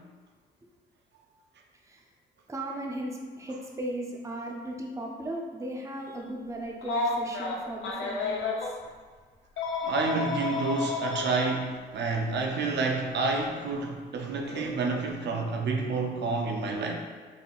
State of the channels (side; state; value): both; normal; correlation 0.32